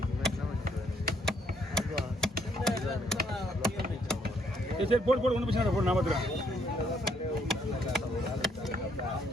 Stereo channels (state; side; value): normal; both; correlation 0.69